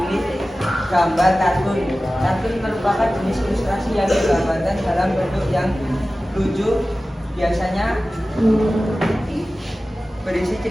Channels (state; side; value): normal; both; correlation 0.96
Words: gambar kartun. Kartun merupakan jenis ilustrasi yang digambarkan dalam bentuk yang lucu, biasanya berisi